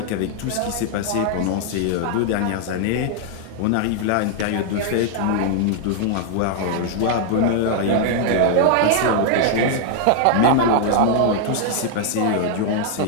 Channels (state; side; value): different; both; correlation 0.00